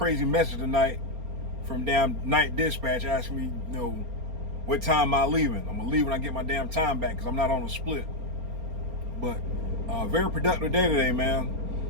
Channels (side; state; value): left; late; 4.3 ms